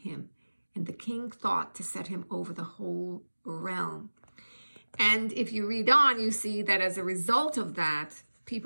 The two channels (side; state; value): both; inverted; correlation -1.00